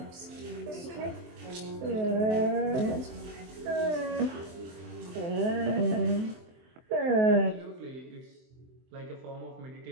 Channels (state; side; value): late; left; 23 ms